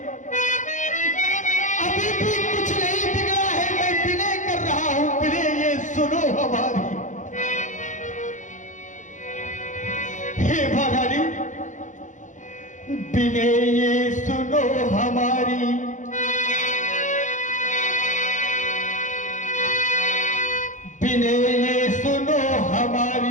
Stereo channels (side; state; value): right; late; 0.36 ms